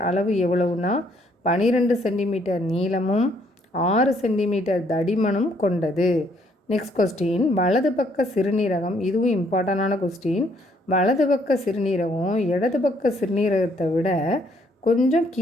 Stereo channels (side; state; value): both; normal; correlation 0.67